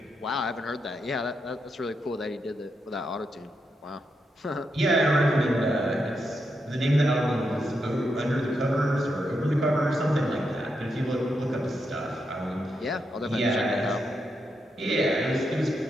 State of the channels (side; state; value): both; normal; correlation 0.83